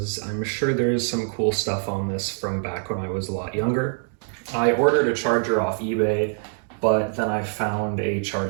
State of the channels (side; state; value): left; silent; 56 dB below the other